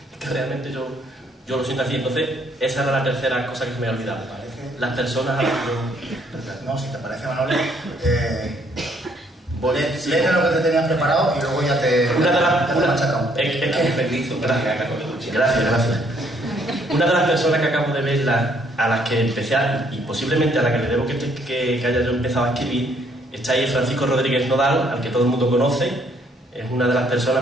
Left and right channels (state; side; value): normal; both; correlation 0.67